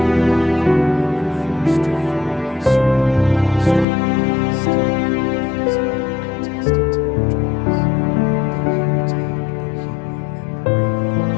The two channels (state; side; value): drops out; right; at 3.9 s